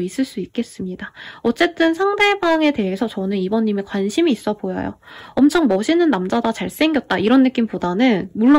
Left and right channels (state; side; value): identical; both; correlation 1.00